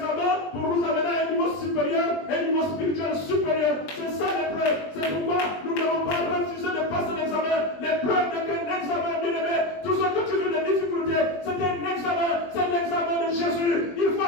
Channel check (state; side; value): late; right; 20 ms